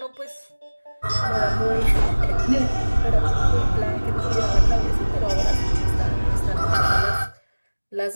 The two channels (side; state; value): both; inverted; correlation -1.00